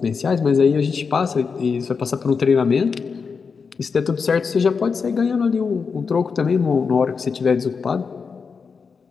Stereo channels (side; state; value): right; quieter; 5.4 dB